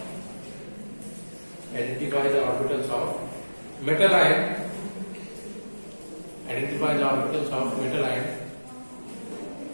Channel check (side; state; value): both; inverted; correlation -1.00